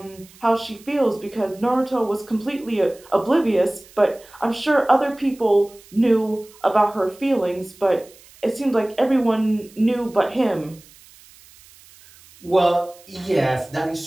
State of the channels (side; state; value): right; noise; hiss, 25 dB below the sound